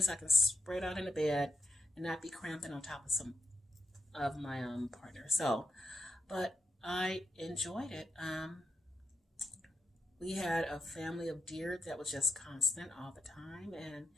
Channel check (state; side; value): normal; both; correlation 0.85